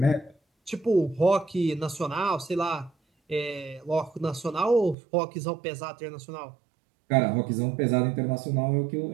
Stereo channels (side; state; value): left; drops out; at 5.0 s